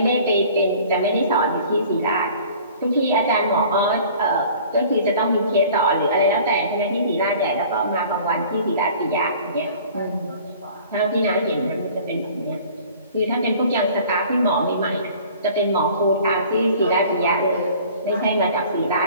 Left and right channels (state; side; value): inverted; both; correlation -0.48